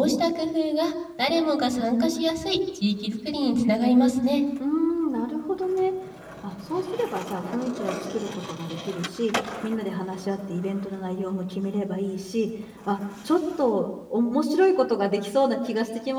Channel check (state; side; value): identical; both; correlation 1.00